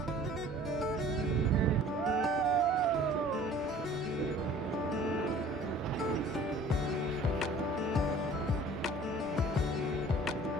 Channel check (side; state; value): both; normal; correlation 0.49